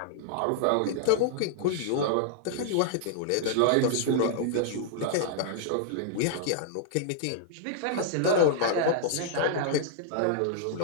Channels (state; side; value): different; both; correlation -0.01